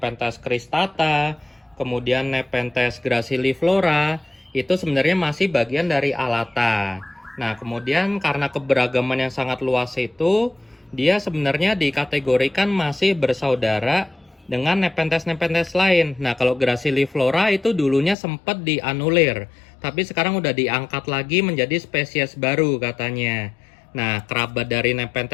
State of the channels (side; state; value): right; drops out; at 18.2 s